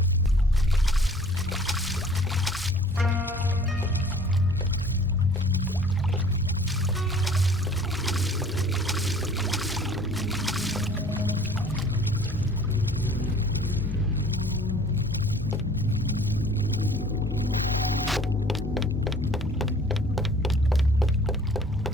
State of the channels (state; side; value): normal; both; correlation 0.51